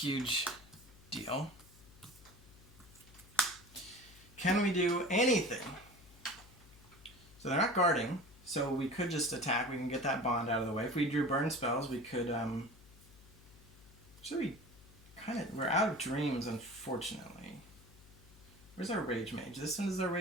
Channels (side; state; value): left; noise; hum, 23 dB below the sound